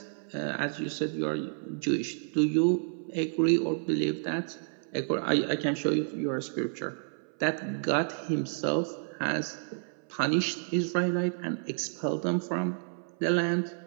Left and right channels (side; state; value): left; silent; 58 dB below the other